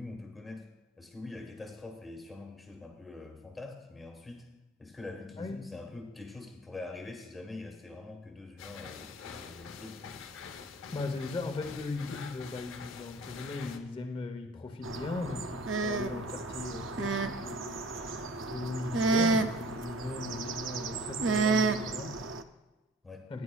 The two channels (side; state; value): both; normal; correlation 0.48